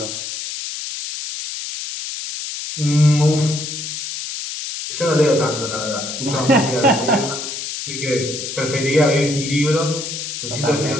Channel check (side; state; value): left; noise; hiss, 6 dB below the sound